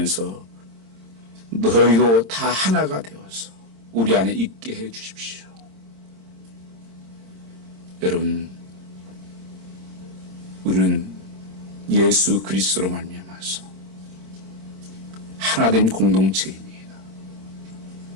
너희도 다 하나가 되어서 우리 안에 있게 해 주십시오. 여러분, 우리는 예수 그리스도로 말미암아서 하나된 공동체입니다.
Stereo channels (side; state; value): left; late; 26 ms